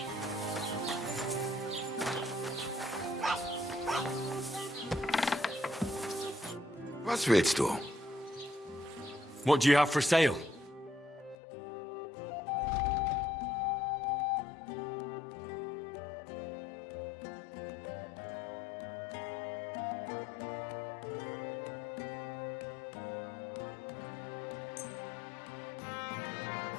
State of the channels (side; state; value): right; drops out; at 11.4 s